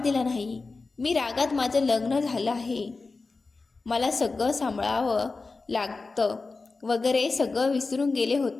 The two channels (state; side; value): quieter; right; 3.9 dB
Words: दिला नाही. मी रागात माझं लग्न झालं आहे, मला सगळं सांभाळावं लागतं वगैरे सगळं विसरून गेले